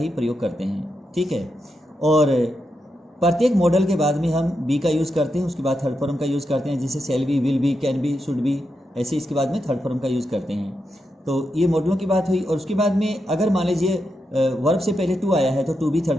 प्रयोग करते हैं, ठीक है। और प्रत्येक मॉडल के बाद में हम बी का यूज़ करते हैं, उसके बाद थर्ड फॉर्म का यूज़ करते हैं, जैसे shall be, will be, can be, should be, ऐसे इसके बाद में थर्ड फॉर्म का यूज़ करते हैं। तो ये मॉडलों की बात हुई। और उसके बाद में अगर मान लीजिए वर्ब से पहले टू आया है तो टू भी थर्ड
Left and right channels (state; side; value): normal; both; correlation 0.86